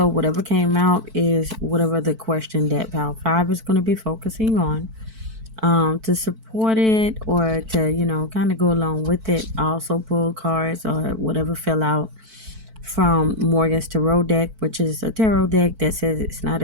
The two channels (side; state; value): left; late; 4.5 ms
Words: whatever came out is whatever the question that pile 5 is going to be focusing on. To support it or to kind of go along with it, I also pull cards or whatever fell out from Morgan's tarot deck, which is a tarot deck that says it's not